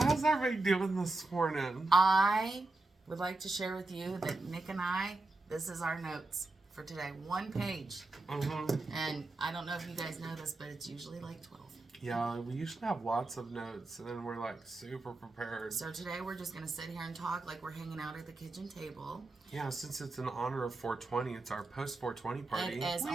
everybody doing this morning? I would like to share with you that Nick and I, this is our notes for today. 1 page. And I don't know if you guys know this, but it's usually like 12. Yeah, we usually have lots of notes, and then we're like super prepared. So today we're just going to sit here and talk like we're hanging out at the kitchen table. Yeah, since it's in honor of 420, it's our post 420 party. It is. Oh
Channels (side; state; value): left; quieter; 3.1 dB